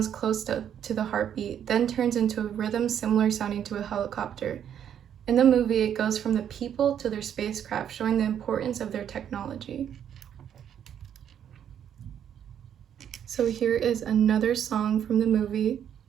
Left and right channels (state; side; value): quieter; left; 9.3 dB